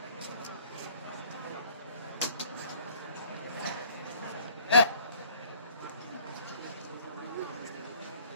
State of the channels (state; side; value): inverted; both; correlation -0.55